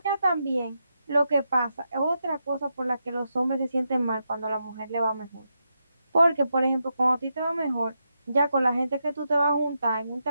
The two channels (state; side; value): inverted; both; correlation -0.85